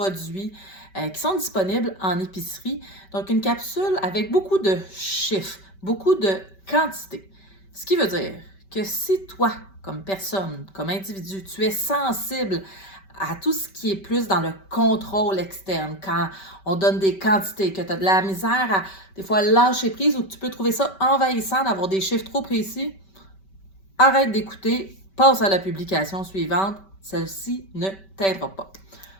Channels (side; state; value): right; late; 5.2 ms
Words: qui sont disponibles en épicerie. Donc, une capsule avec beaucoup de chiffres, beaucoup de quantité. Ce qui veut dire que si toi, comme personne, comme individu, tu es sensible à tout ce qui est plus dans le contrôle externe, quand on donne des quantités, que tu as de la misère à des fois lâcher prise ou que tu peux trouver ça envahissant d'avoir des chiffres trop précis, arrête d'écouter, passe à la publication suivante, celle-ci ne t'aidera pas.